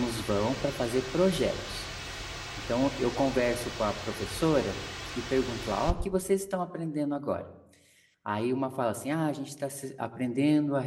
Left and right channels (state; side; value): identical; both; correlation 1.00